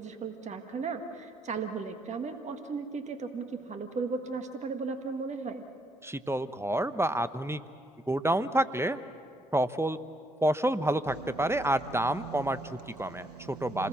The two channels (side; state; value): both; normal; correlation 0.73